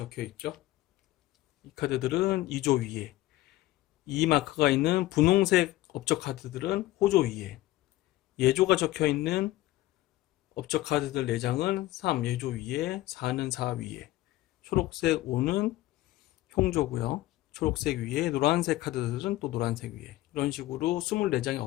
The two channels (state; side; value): quieter; right; 16.7 dB